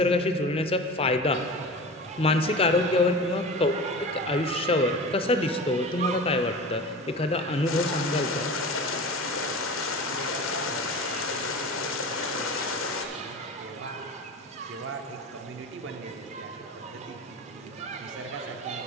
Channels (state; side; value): normal; both; correlation 0.33